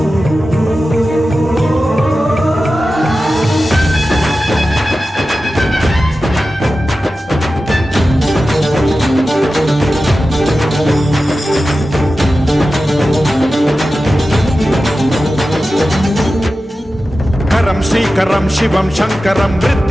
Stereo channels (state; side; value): normal; both; correlation 0.94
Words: श्रीकरं शिवं शंकरं